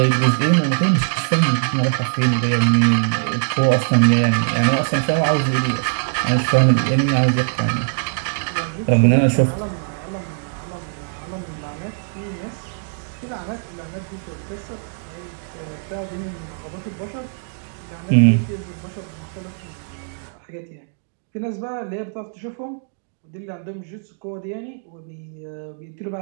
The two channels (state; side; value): silent; left; digital silence